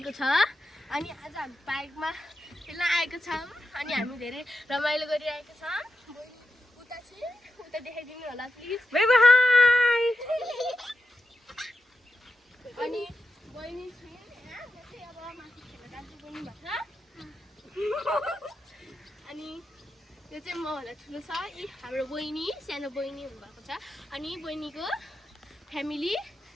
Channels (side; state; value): both; normal; correlation 0.89